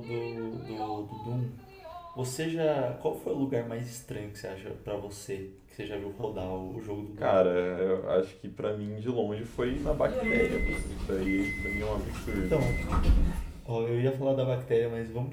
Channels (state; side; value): identical; both; correlation 1.00